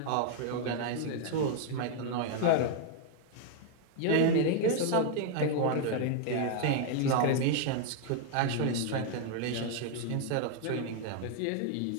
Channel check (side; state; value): both; different; correlation 0.00